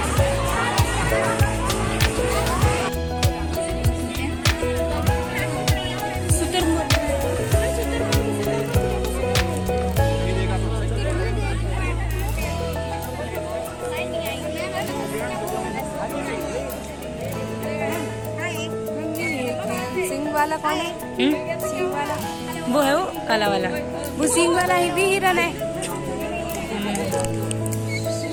सिंह वाला कौन है? सिंह वाला वो है वो काला वाला। वो सिंह वाला ही भी हिरन है।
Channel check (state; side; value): identical; both; correlation 1.00